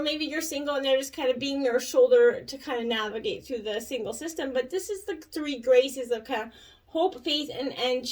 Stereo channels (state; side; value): identical; both; correlation 1.00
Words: maybe you're single and they're just kind of being your shoulder to kind of navigate through the single system. But this is the three graces of kind of hope, faith, and